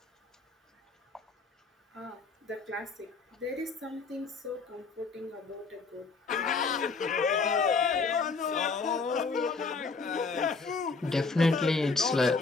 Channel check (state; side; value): quieter; right; 4.4 dB